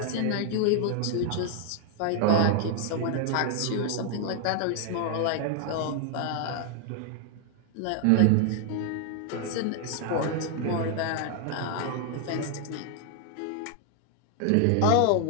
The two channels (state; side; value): different; both; correlation 0.00